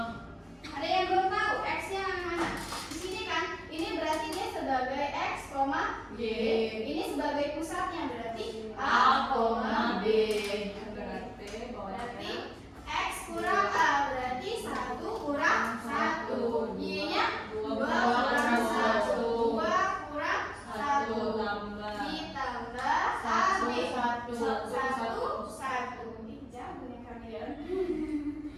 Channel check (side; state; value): both; identical; correlation 1.00